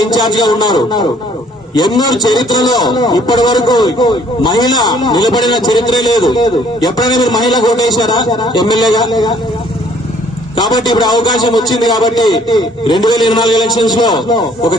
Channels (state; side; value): normal; both; correlation 0.61